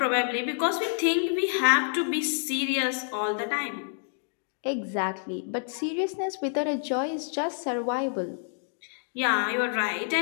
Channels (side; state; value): right; silent; digital silence